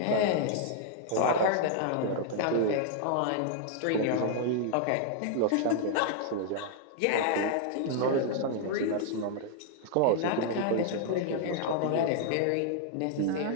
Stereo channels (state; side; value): different; both; correlation -0.01